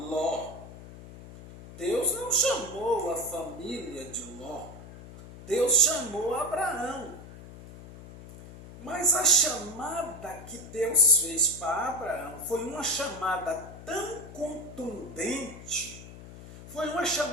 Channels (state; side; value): noise; left; hum, 15 dB below the sound